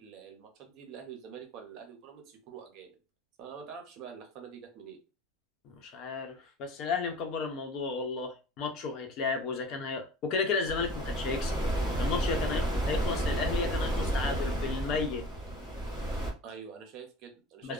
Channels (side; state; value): both; normal; correlation 0.41